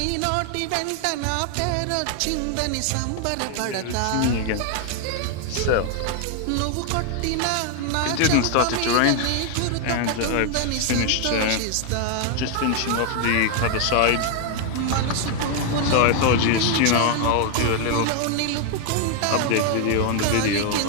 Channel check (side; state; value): both; different; correlation 0.00